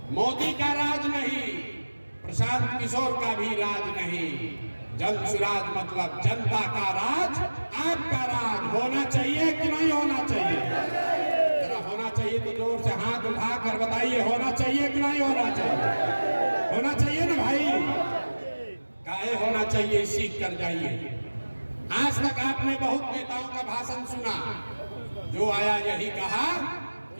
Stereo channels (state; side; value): inverted; both; correlation -1.00